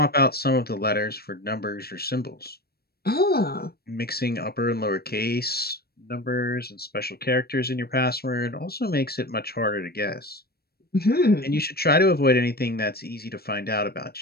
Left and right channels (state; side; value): late; right; 0.45 ms